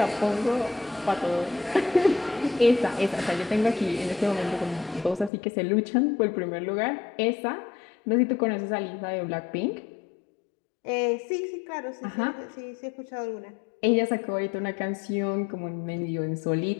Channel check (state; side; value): drops out; right; at 5.3 s